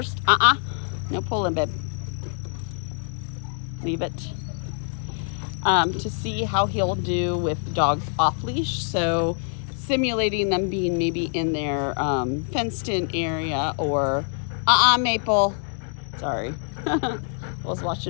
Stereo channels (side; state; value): right; silent; 55 dB below the other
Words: No pulling, babe. Leave it. To see how he'll do with dogs off leash. So simulating them being maybe in their fenced in area or Maple. Sorry. I was